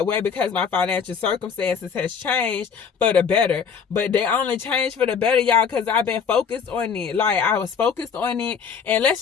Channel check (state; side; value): quieter; right; 6.6 dB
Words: way, because my financial circumstances has changed for the better. But they only changed for the better, y'all, because I've been focused on it. Like I was focused on it, and let's